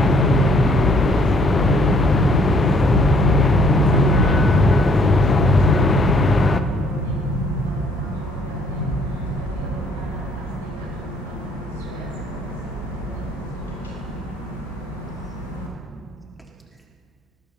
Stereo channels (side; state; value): both; normal; correlation 0.63